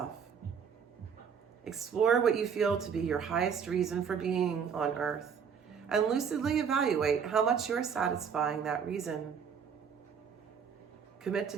Explore what you feel to be your highest reason for being on earth and lucidly evaluate how much you're satisfying that reason. Commit to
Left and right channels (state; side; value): quieter; left; 6.9 dB